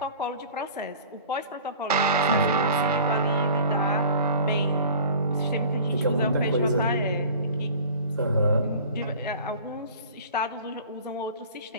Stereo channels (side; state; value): both; inverted; correlation -0.43